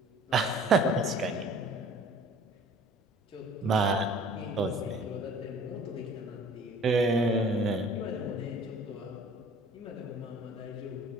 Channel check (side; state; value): both; normal; correlation 0.49